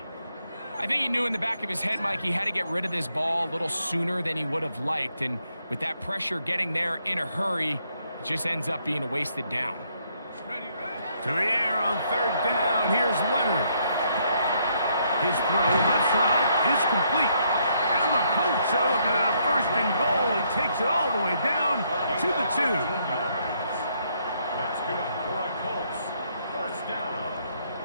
I think he knew in the back of his head, Mike, he had to get rid of this ball a little sooner than he would have liked. And with that pressure getting there in a hurry, it just ends up being a wasted down. To the air on third down. Here's Leonard. His throw left side is complete. And the Colts are looking at a 1st and goal. He takes it all the way down to the 2. That's good for a Colts. First down.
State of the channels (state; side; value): inverted; both; correlation -0.72